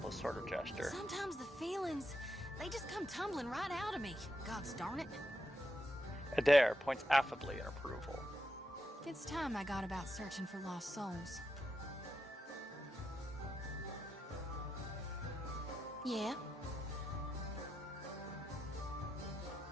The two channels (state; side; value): normal; both; correlation 0.85